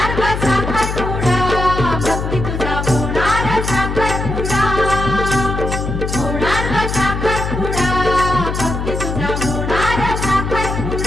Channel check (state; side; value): noise; left; hum, 3 dB below the sound